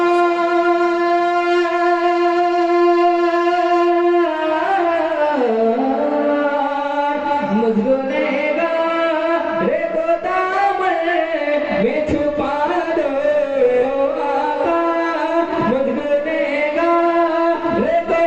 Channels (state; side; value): identical; both; correlation 1.00